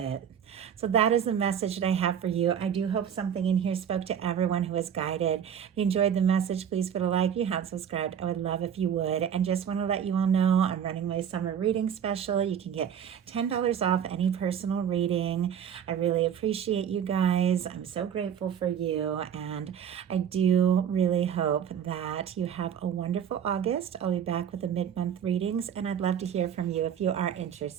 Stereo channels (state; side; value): quieter; left; 8.6 dB